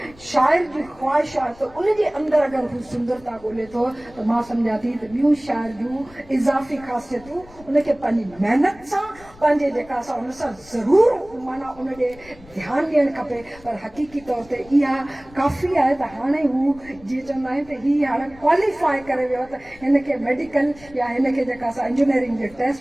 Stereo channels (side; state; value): left; noise; rumble, 23 dB below the sound